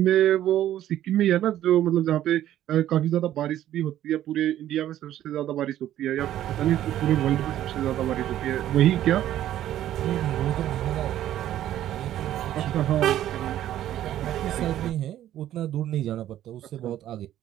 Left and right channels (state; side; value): quieter; left; 12.4 dB